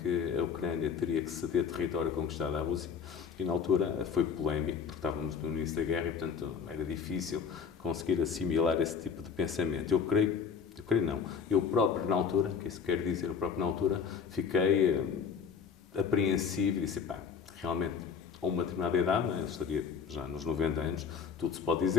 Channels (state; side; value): quieter; right; 6.5 dB